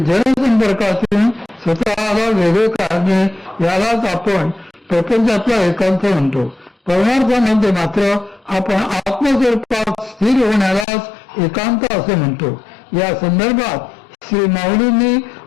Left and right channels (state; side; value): drops out; right; at 10.9 s